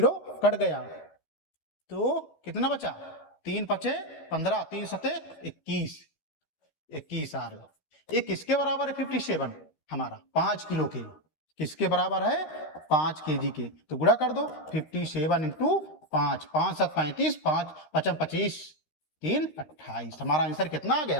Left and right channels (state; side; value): late; right; 13 ms